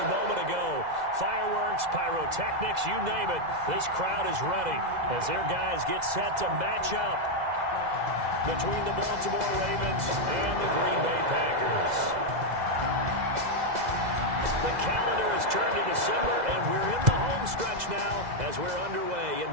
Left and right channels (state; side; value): late; left; 2.0 ms